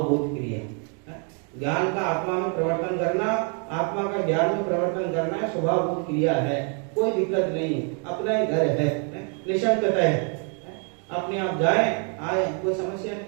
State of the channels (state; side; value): quieter; left; 39.6 dB